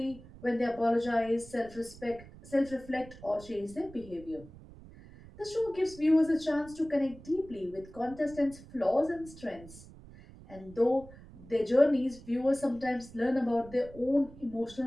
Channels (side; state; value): right; noise; rumble, 19 dB below the sound